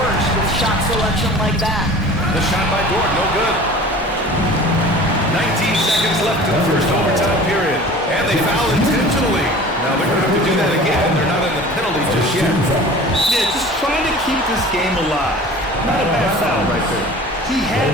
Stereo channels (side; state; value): both; normal; correlation 0.42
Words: worse with shot selection like that. The shot by Dort, no good. 19 seconds left in the first overtime period. And they foul intentionally. Now they're going to have to do that again. They're not in the penalty just yet. Yeah, just trying to keep this game alive. Not a bad foul right there. He